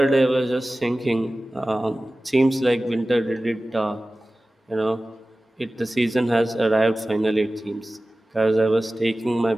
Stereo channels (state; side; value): normal; both; correlation 0.96